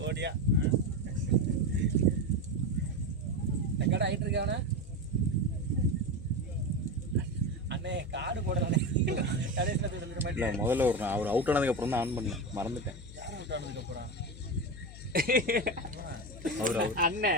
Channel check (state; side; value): noise; left; hum, 14 dB below the sound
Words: ஓடியா கடை ஆயிட்டு இருக்காவனா அண்ணே காடு போடுறானே கடைசியில் போய் சொல்லிட இல்லை மாட்டேன் முதல்ல ஒரு அவர் அவுட் ஆனதுக்கப்புறம் தான் ஆன் பண்ணேன், மறந்துட்டேன். அப்புறம் அவர்